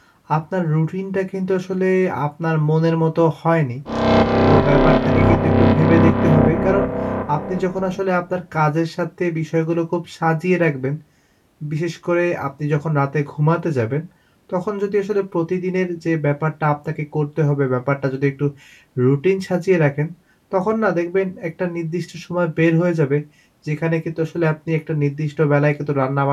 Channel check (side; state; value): both; identical; correlation 1.00